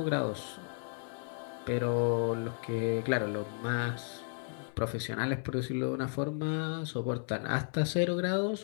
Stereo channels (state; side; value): silent; right; digital silence